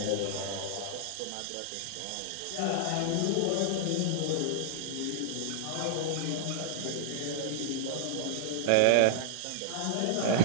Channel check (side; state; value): both; different; correlation -0.01